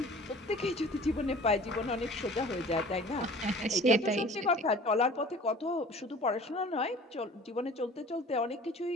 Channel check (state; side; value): normal; both; correlation 0.45